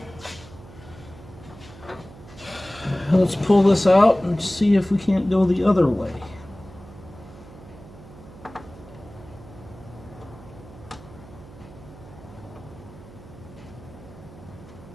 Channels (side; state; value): right; noise; hum, 18 dB below the sound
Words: Let's pull this out and see if we can't go the other way.